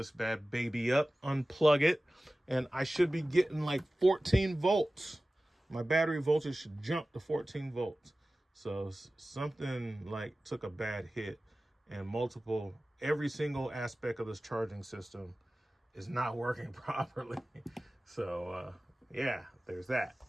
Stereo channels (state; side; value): normal; both; correlation 0.97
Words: bad baby up, unplug it, and I should be getting like 14 volts. My battery voltage should jump to 14 volts. So something like took a bad hit, and every single aspect of this charging system is not working properly. So yeah, there's that.